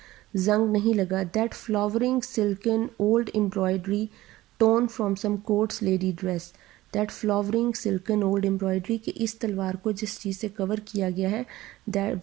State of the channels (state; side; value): quieter; left; 16.9 dB